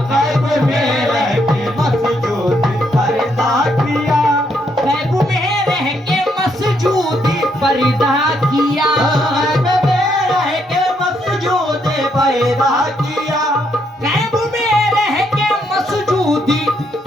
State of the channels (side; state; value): both; normal; correlation 0.75